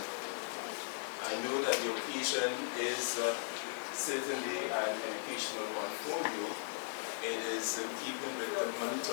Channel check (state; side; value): silent; right; digital silence